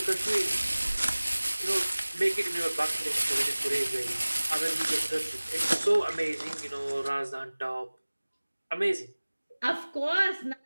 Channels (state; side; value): inverted; both; correlation -1.00